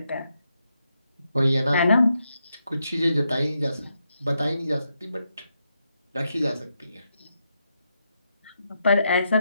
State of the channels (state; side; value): inverted; both; correlation -0.83